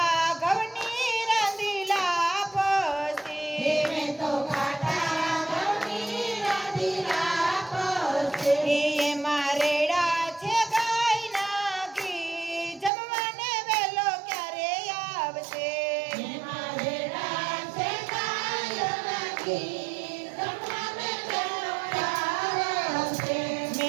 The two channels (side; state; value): left; drops out; at 12.9 s